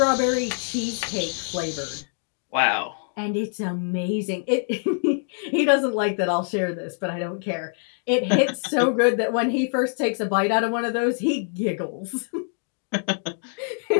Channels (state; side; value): silent; right; digital silence